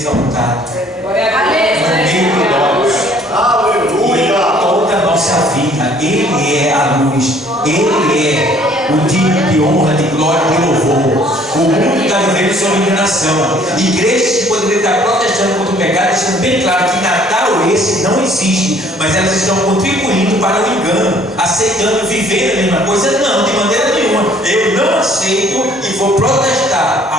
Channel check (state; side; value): normal; both; correlation 0.58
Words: no meio de nós. Aleluia! Toda a nossa vida, Ele é a luz, Ele é o digno de honra, de glória e de louvor. O mundo está vivendo sob enganação. Igrejas que poderiam estar protestando contra o pecado, deixando bem claro que Natal esse não existe, mas elas estão contribuindo para o engano, aceitando viver a mesma coisa. Não, de maneira nenhuma. Eu não aceito e vou protestar